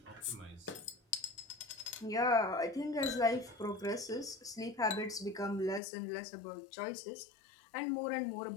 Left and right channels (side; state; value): right; drops out; at 5.8 s